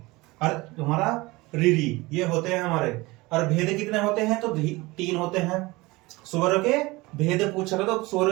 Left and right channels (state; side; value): quieter; left; 22.1 dB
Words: और हमारा री, ये होते हैं हमारे। और भेद कितने होते हैं? तो 3 होते हैं। स्वर के भेद पूछेगा तो स्वर